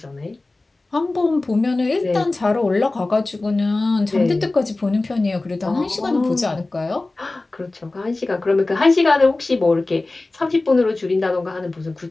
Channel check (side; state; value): right; quieter; 3.1 dB